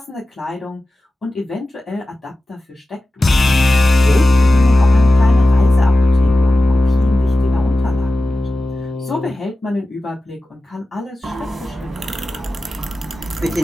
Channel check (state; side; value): normal; both; correlation 0.94